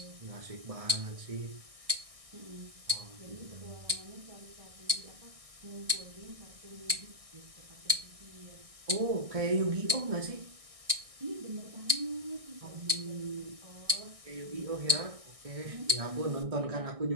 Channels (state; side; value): late; left; 1.6 ms